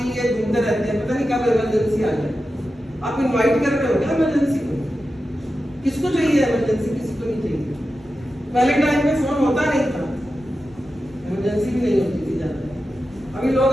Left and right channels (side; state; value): both; normal; correlation 0.91